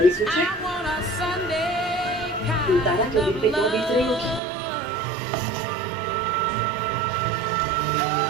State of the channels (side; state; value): left; drops out; at 4.4 s